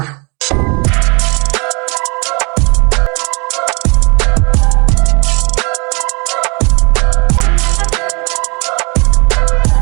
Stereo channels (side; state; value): left; quieter; 30.6 dB